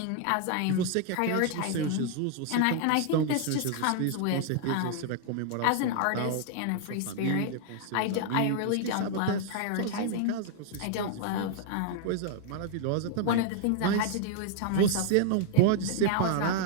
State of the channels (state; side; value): different; both; correlation 0.00